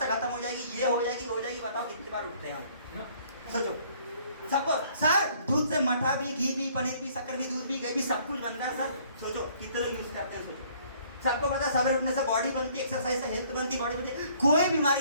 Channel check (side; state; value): both; inverted; correlation -0.60